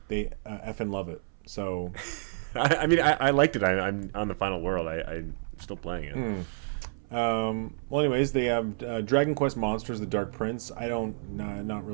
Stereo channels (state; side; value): silent; left; 58 dB below the other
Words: effing love it. So, I mean, I liked it. I'm on the final world. I'm still playing it. Well, anyways, they have Dragon Quest Monsters: The Dark Prince. Not